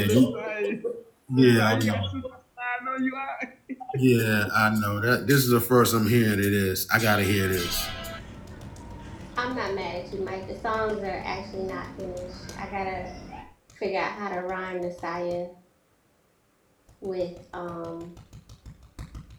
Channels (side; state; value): both; identical; correlation 1.00